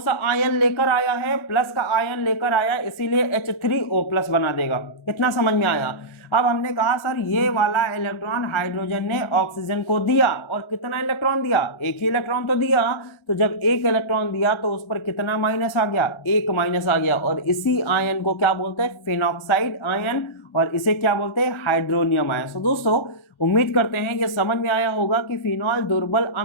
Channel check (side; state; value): right; late; 1.4 ms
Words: आयन लेकर आया है? प्लस का आयन लेकर आया, इसीलिए H3O+ बना देगा। इतना समझ में आया। अब हमने कहा सर ये वाला इलेक्ट्रॉन हाइड्रोजन ने ऑक्सीजन को दिया, और कितना इलेक्ट्रॉन दिया? एक ही इलेक्ट्रॉन तो दिया। तो जब एक इलेक्ट्रॉन दिया तो उस पर कितना माइनस आ गया? एक माइनस आ गया, और इसी आयन को क्या बोलते हैं? फिनॉक्साइड आयन, और इसे क्या बोलते हैं? Hydronium ion. तो दोस्तों उम्मीद करते हैं ये समझ में आया होगा कि फिनॉल दुर्बल